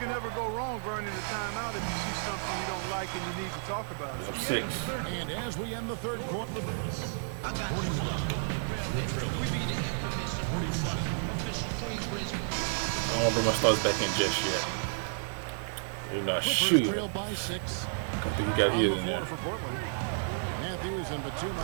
ever go wrong burning a timeout if you see something you don't like and you need to talk about it. I'm 6. And as we end the third quarter. I don't want to bring my stars back in just yet. They're not shooting. Trail by 6. I think he got his in there. For Portland. Matthews and Batum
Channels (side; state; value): left; silent; digital silence